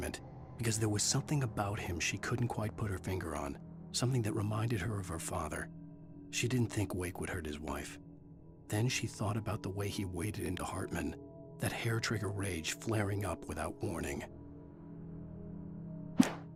because there was something about him she couldn't quite put her finger on, something that reminded her of her father. She didn't think Wake would hurt his wife. Then she thought about the way he waded into Hartman, that hair-trigger rage flaring up without warning.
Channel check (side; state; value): both; identical; correlation 1.00